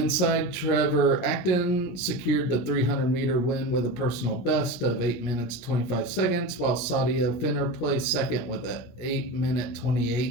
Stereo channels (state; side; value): late; right; 17 ms